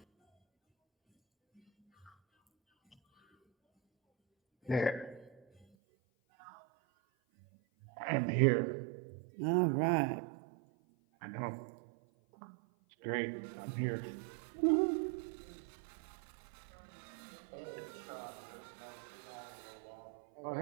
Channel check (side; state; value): left; drops out; at 5.7 s